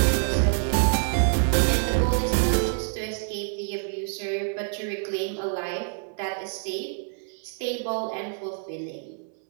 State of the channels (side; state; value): left; silent; 61 dB below the other